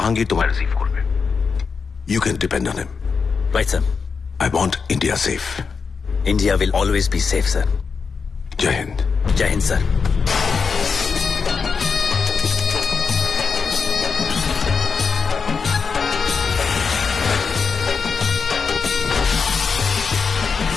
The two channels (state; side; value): quieter; right; 5.4 dB